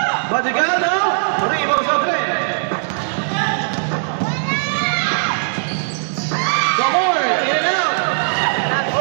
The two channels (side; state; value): left; silent; digital silence